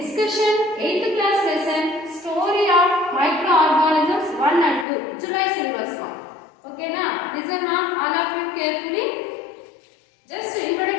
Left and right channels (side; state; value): right; drops out; at 4.9 s